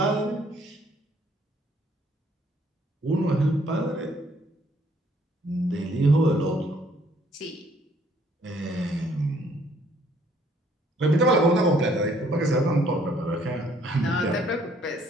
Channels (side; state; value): both; normal; correlation 0.63